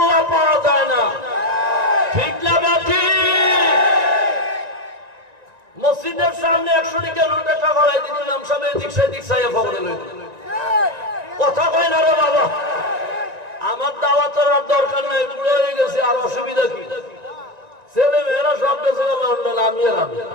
পাওয়া যায় না ঠিক না বেঠি মসজিদের সামনে 100 টাকা নোট একটা গলায় দিন নাম সামনে এদিক সেদিক চাইয়া ফগড়ে লইল কথা কয় না রে বাবা আমার দাওয়াতের আর দরকার নাই বুড়ো হয়ে গেছে আর অসুবিধা কি ছেলে মেয়েরা সব দেশে লন্ডন আমি আর আমি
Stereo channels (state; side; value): late; left; 1.9 ms